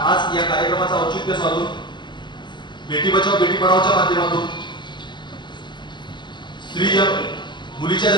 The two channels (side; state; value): right; late; 0.22 ms